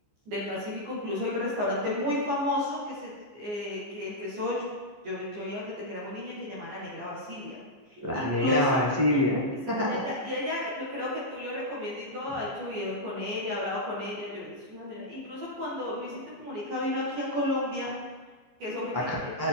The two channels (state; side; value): late; left; 14 ms